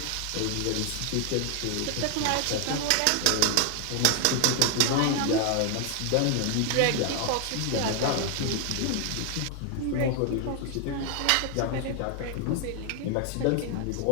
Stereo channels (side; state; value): both; different; correlation 0.00